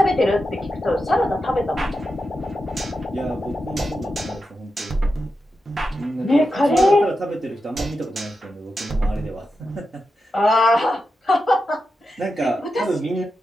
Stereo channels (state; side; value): normal; both; correlation 0.89